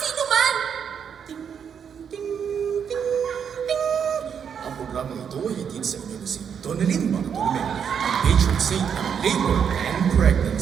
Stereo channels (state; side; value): quieter; left; 7.5 dB